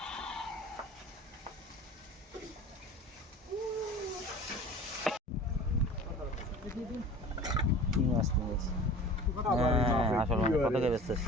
কি মাছ নিয়েছি আসল কত কে বেচতেছ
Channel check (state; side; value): normal; both; correlation 0.40